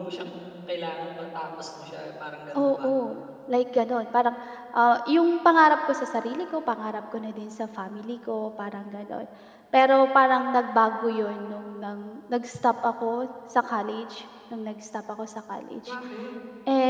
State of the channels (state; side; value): identical; both; correlation 1.00